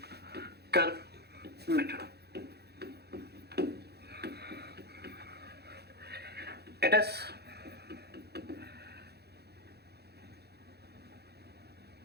curve method. It is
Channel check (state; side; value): late; left; 0.48 ms